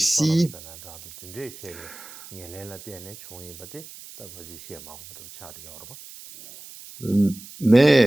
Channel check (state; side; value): noise; right; hiss, 17 dB below the sound